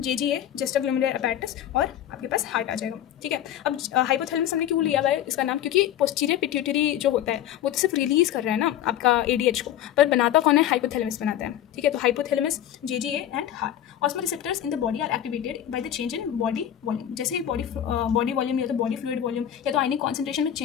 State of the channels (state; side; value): quieter; right; 11.2 dB